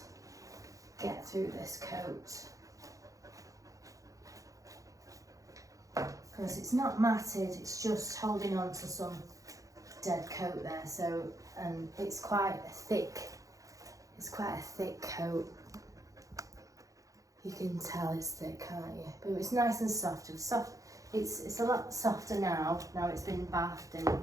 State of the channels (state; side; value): late; left; 0.16 ms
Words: get through this coat, because it's not matted, it's just holding on to some dead coat there. So, and it's quite a thick coat. You can tell it's thick, can't you? But it's nice and soft. It's a lot softer now it's been bathed